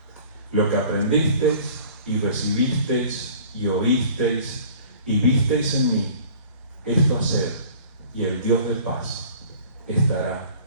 Lo que aprendisteis y recibisteis y oísteis y visteis en mí, esto haced, y el Dios de paz estará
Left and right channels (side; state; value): both; inverted; correlation -0.48